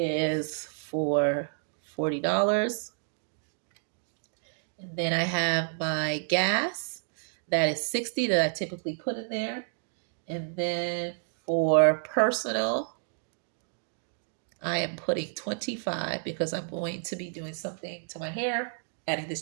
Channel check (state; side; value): silent; left; 58 dB below the other